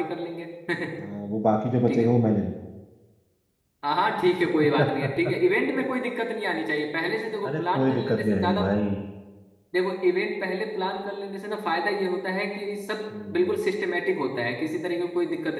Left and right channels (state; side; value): identical; both; correlation 1.00